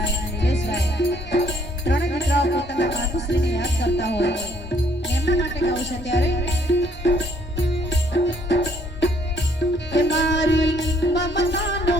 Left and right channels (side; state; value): both; normal; correlation 0.64